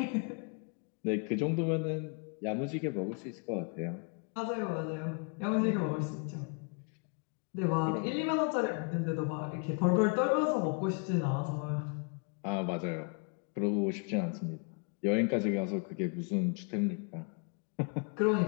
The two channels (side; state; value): right; quieter; 37.6 dB